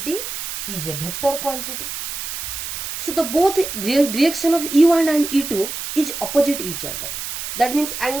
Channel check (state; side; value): noise; right; hiss, 6 dB below the sound